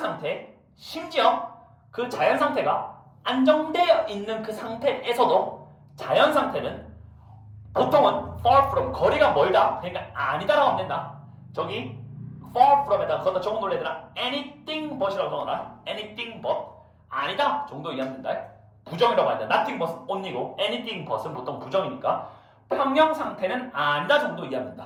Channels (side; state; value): both; identical; correlation 1.00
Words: 심지어 그 자연 상태가 안정되어 있는 그 상태에서도 자연 상태는 보통은 far from, 거리가 멀다. 그러니까 아니다라고 하면 된다. 저기 far from에다가 거기다 적어놓을 애들아 anything but이라고 적어놔. anything but 아니다 정도 이해하면 된다. 부정이라고 한다. nothing but only고 anything but은 보통 부정이니까 평형 상태는 아니다 정도 이해하면